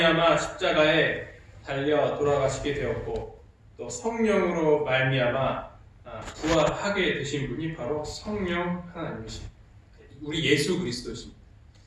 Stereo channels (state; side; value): identical; both; correlation 1.00